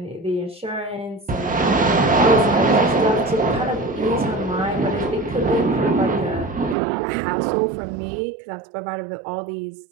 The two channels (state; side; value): drops out; left; at 6.8 s